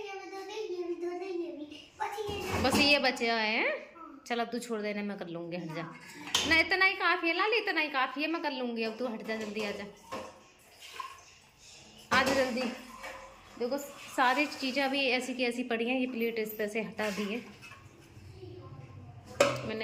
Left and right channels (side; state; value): both; identical; correlation 1.00